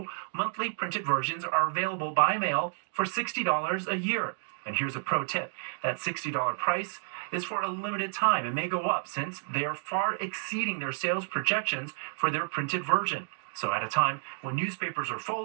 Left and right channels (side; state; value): left; silent; 57 dB below the other